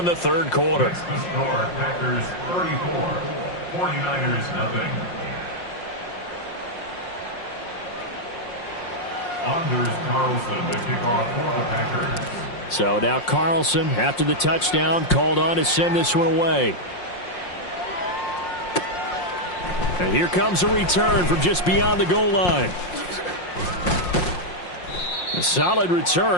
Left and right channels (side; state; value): right; late; 5.6 ms